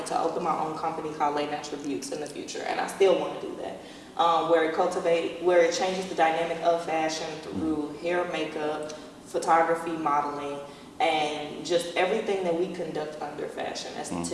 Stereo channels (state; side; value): identical; both; correlation 1.00